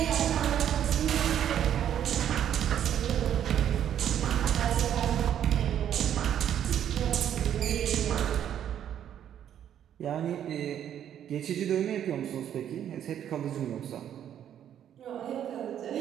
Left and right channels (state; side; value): quieter; left; 10.0 dB